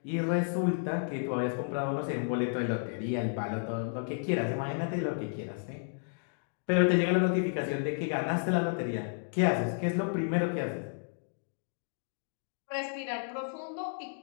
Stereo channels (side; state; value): right; silent; digital silence